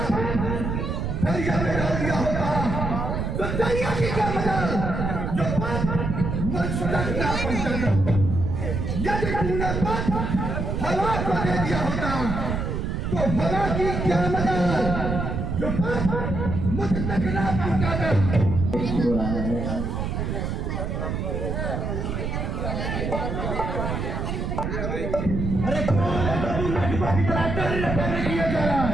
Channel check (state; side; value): noise; right; rumble, 2 dB below the sound